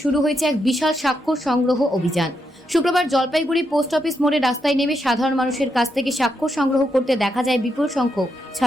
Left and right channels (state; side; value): normal; both; correlation 0.82